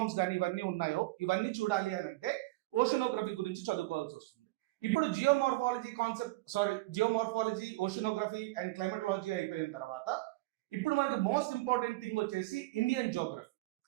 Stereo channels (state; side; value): quieter; left; 20.1 dB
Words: కానీ ఇవన్నీ ఉన్నాయో ఇవన్నీ చూడాలి అని అంటే ఓషియనోగ్రఫీ గురించి చదువుకోవాల్సి వస్తుంది. ఇప్పుడు జియోమార్ఫాలజీ, ఓషియనోగ్రఫీ అండ్ క్లైమేటలాజీ అయిపోయిన తర్వాత ఇప్పుడు మనకి మోస్ట్ ఇంపార్టెంట్ థింగ్ వచ్చేసి ఇండియన్ జోగ్రఫీ.